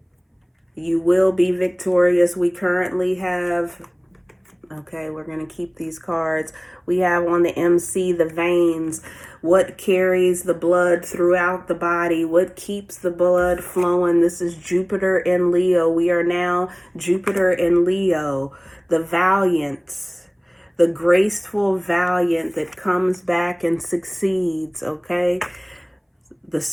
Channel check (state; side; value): identical; both; correlation 1.00